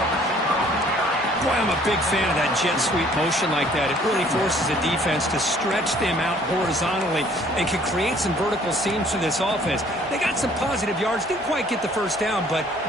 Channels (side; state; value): both; normal; correlation 0.58